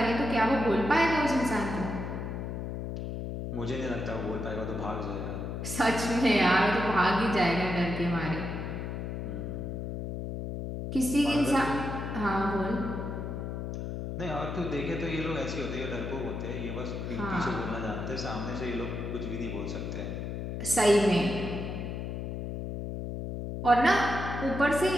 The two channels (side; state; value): left; noise; hum, 5 dB below the sound